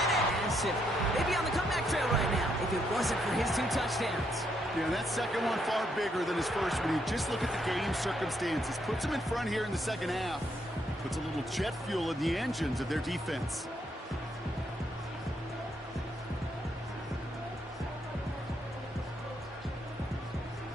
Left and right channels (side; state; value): both; normal; correlation 0.75